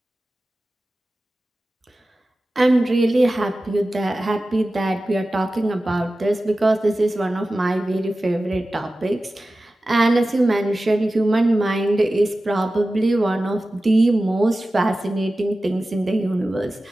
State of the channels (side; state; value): both; normal; correlation 0.95